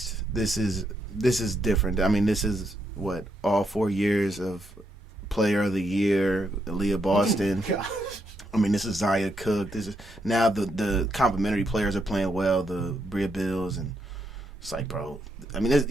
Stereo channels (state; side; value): normal; both; correlation 0.78